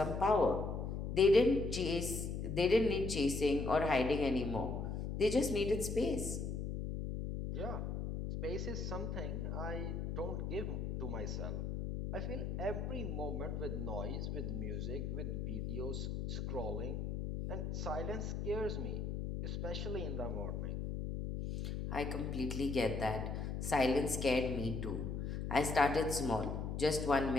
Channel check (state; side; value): noise; left; hum, 3 dB below the sound